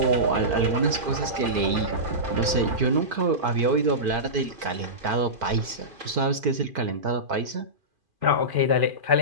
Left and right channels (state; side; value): late; left; 2.5 ms